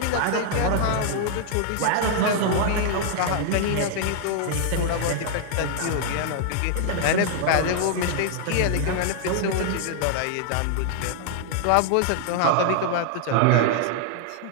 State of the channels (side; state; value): both; different; correlation 0.00